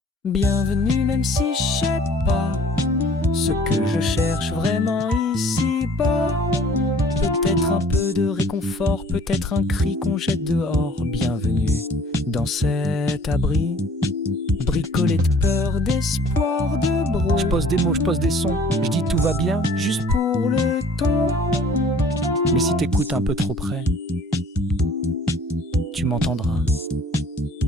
Bienvenue même si je sais pas ce que je cherche vraiment ici-bas. Peut-être un peu de réconfort, peut-être un cri qu'on jette dehors. Bienvenue dans cet abri, bricolé de peur, d'espoir, de bro. Je pose des mots, je pose des sons, je dis tout va bien, juste pour le ton. Mais si t'écoutes un peu trop près, tu m'entendras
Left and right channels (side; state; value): both; normal; correlation 0.53